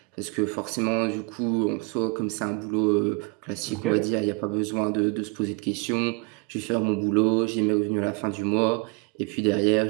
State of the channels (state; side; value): quieter; left; 30.1 dB